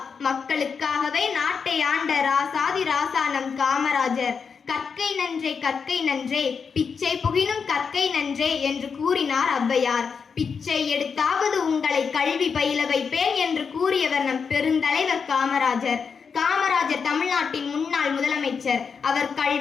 மக்களுக்காகவே நாட்டை ஆண்ட ராசாதி ராசா நம் காமராஜர். கற்கை நன்றே கற்கை நன்றே, பிச்சை புகினும் கற்கை நன்றே என்று கூறினார் ஔவையார். பிச்சை எடுத்தாவது உங்களை கல்வி பயில வைப்பேன் என்று கூறியவர் நம் பெருந்தலைவர் காமராஜர். காமராஜர் தமிழ்நாட்டின் முன்னாள் முதலமைச்சர். அவர்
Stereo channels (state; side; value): quieter; right; 5.9 dB